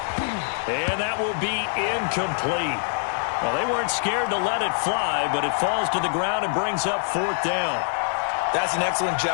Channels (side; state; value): right; silent; digital silence